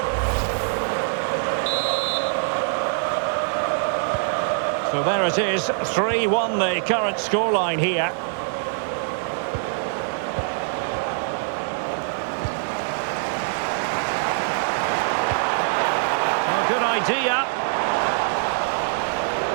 So there it is, 3-1 the current scoreline here. Good idea.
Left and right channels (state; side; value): silent; left; digital silence